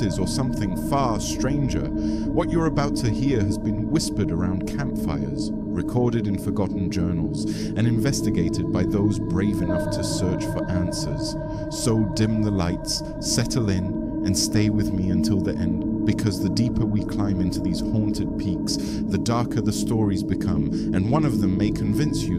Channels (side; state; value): both; identical; correlation 1.00